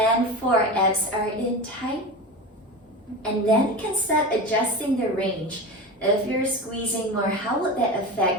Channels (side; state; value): both; normal; correlation 0.27